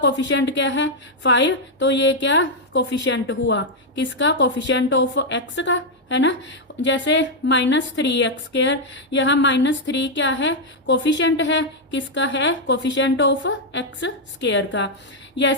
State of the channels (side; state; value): both; normal; correlation -0.01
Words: क्या है 5, तो ये क्या कोफिशिएंट हुआ किसका, कोफिशिएंट ऑफ x का, है ना। जैसे -3x², यहाँ -3 क्या है कोफिशिएंट है किसका है, कोफिशिएंट ऑफ x² का।